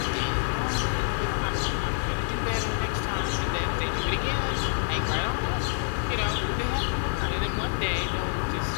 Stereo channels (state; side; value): silent; right; 57 dB below the other